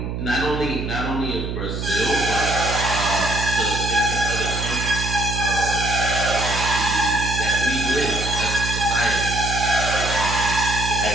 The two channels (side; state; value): right; noise; hum, 4 dB below the sound